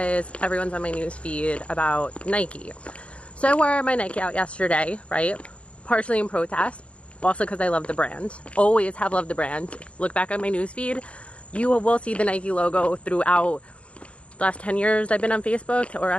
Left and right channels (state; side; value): late; right; 0.061 ms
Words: everyone's on my news feed about Nike. So I wore my Nike out yesterday, right? Partially in protest, also because I love the brand. Always have loved the brand. Look back on my news feed, you will see the Nike logo throughout the last 10 years I've been on Facebook, or